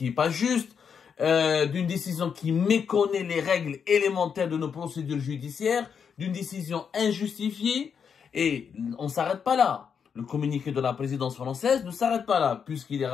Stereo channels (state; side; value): quieter; right; 6.9 dB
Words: pas juste, d'une décision qui méconnaît les règles élémentaires de nos procédures judiciaires, d'une décision injustifiée. Et on ne s'arrête pas là. Le communiqué de la présidence française ne s'arrête pas là, puisqu'il est